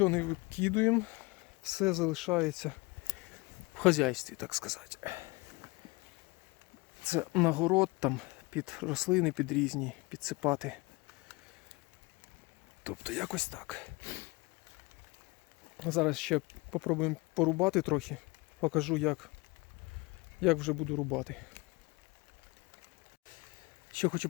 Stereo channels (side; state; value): right; quieter; 25.0 dB